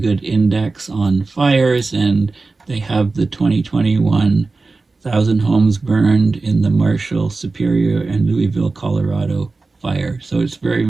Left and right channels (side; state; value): left; quieter; 3.7 dB